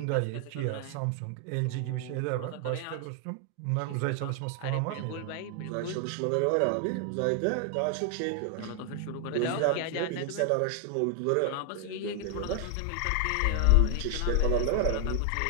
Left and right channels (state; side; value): different; both; correlation 0.00